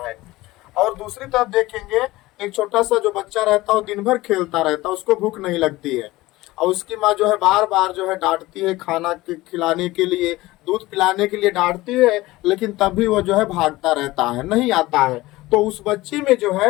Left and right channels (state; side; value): quieter; right; 18.8 dB